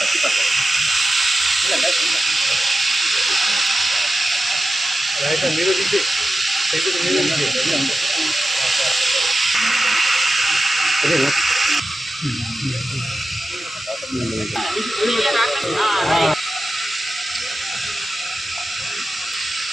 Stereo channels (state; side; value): normal; both; correlation 0.92